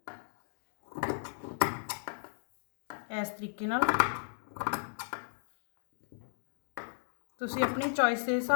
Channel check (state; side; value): silent; right; digital silence